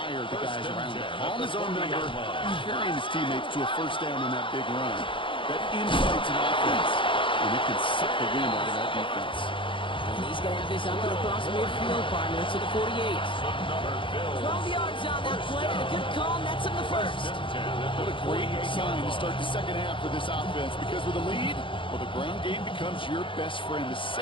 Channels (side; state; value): right; late; 0.25 ms